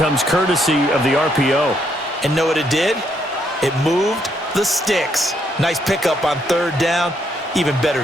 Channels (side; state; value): both; normal; correlation 0.74